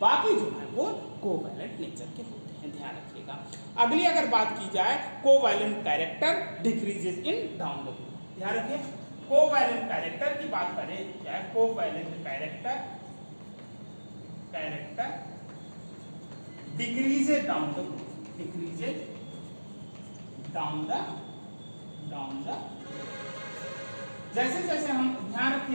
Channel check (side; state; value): both; inverted; correlation -1.00